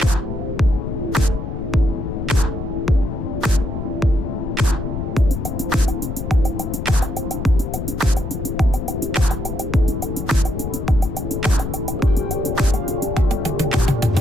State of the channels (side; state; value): left; noise; rumble, 5 dB below the sound